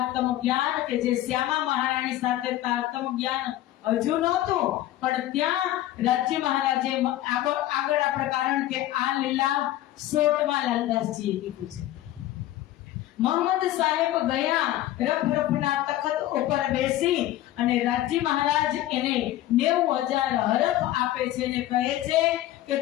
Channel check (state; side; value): quieter; right; 14.4 dB